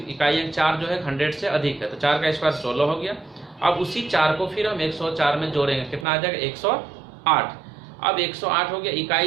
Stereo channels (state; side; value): drops out; left; at 6.1 s